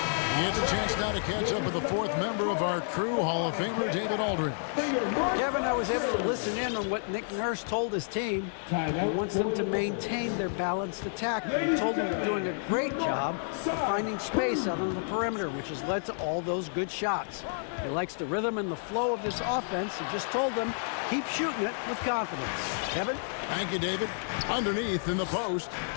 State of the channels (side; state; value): right; silent; digital silence